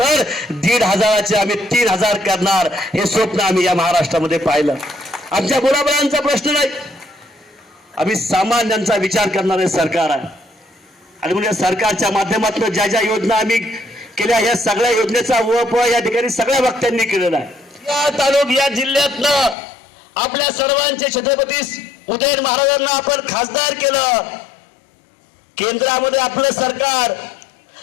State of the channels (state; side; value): drops out; right; at 19.6 s